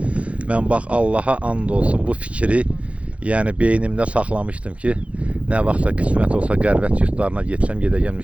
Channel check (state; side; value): late; left; 0.063 ms